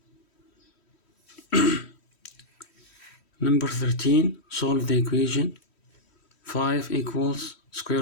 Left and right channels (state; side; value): late; right; 3.1 ms